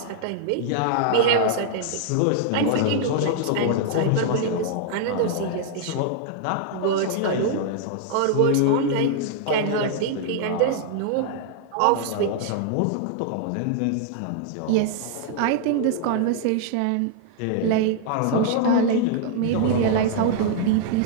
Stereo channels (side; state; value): both; different; correlation -0.01